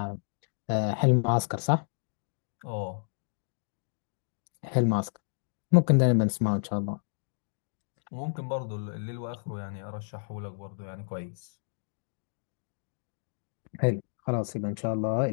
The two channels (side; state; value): right; silent; digital silence